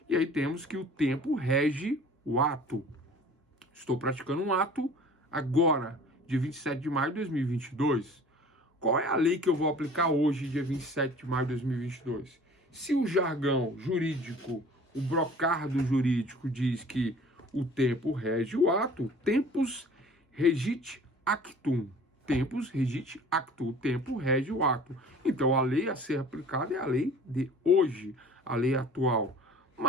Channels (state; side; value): normal; both; correlation 0.47